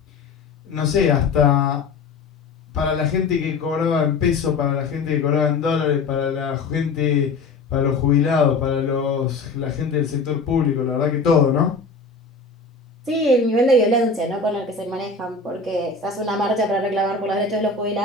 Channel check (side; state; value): right; quieter; 4.2 dB